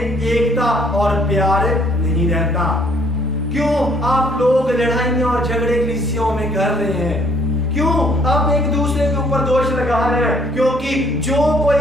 और प्यार नहीं रहता, क्यों आप लोग लड़ाइयां और झगड़े कलीसियाओं में कर रहे हैं, क्यों आप एक दूसरे के ऊपर दोष लगा रहे हैं। क्योंकि जो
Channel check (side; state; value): both; normal; correlation 0.62